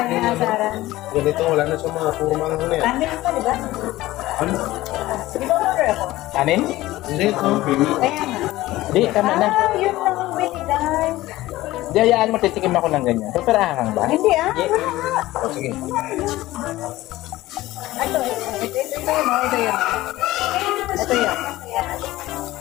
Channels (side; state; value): right; quieter; 17.1 dB